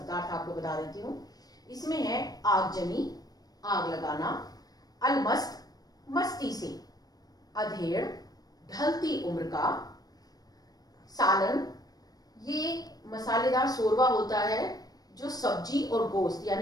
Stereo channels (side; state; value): right; late; 0.19 ms